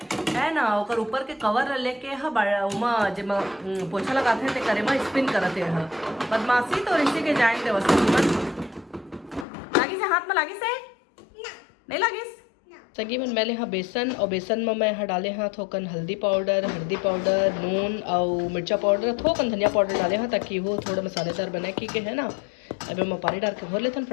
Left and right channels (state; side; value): drops out; right; at 9.5 s